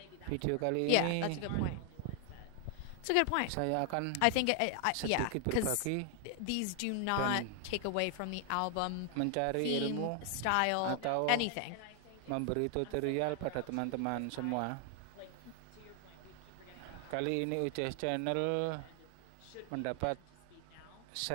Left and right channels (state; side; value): different; both; correlation 0.00